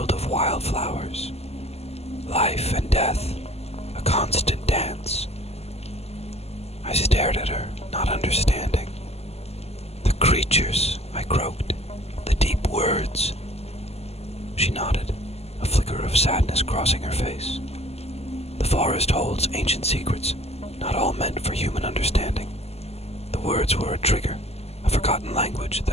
of wildflowers. Life and death, a constant dance. I stared at her, not understanding. "The creatures," I croaked, "the deep words." She nodded, a flicker of sadness crossing her face. "The forest holds ancient secrets, not all meant for human understanding. The words were a trigger, a forgotten language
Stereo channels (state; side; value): late; right; 0.30 ms